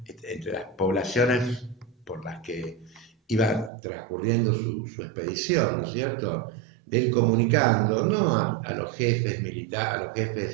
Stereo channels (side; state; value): left; drops out; at 3.7 s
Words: entre las poblaciones por las que iba transcurriendo su expedición, ¿no es cierto? De ir comunicando, no a los jefes militares, a los